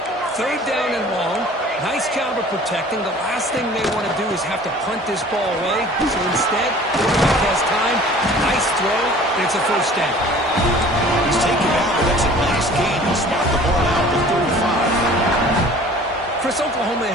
3rd down and long. Nice job of protecting. The last thing they want to do is have to punt this ball away. So instead, quarterback has time. Nice throw, and it's a first down. He's taken out, but that's a nice gain. He'll spot the ball out to 35. Chris, Oklahoma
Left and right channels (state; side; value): normal; both; correlation 0.47